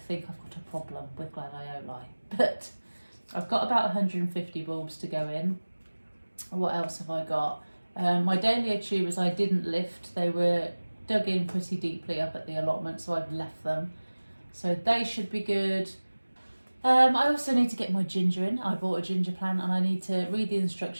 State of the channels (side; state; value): both; inverted; correlation -1.00